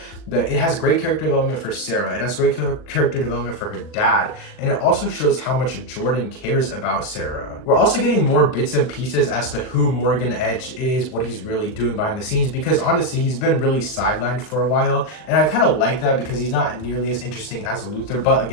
It has great character development for Sarah. It has great character development for her dad. And it also shows how much Jordan cares about Sarah. We're also getting more bits and pieces as to who Morgan Edge is, what he's really doing behind the scenes, because honestly, he's been really sidelined for a while. And I kind of like that because he's not nearly as interesting as Luthor. But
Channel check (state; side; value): late; right; 39 ms